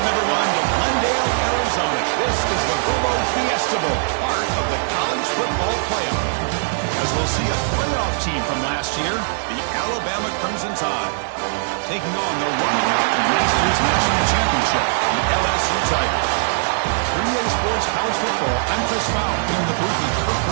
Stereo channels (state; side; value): silent; left; digital silence